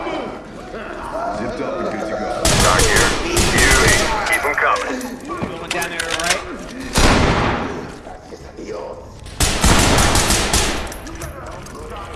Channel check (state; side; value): identical; both; correlation 1.00